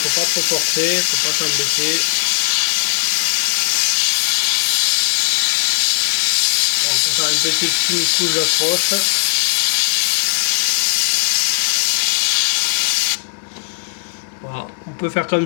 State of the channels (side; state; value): right; silent; digital silence